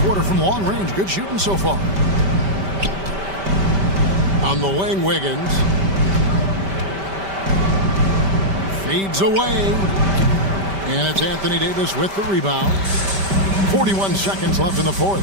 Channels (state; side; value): late; left; 5.1 ms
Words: from long range. Good shooting so far. On the wing, Wiggins. Fades away. And it's Anthony Davis with the rebound. 41 seconds left in the fourth.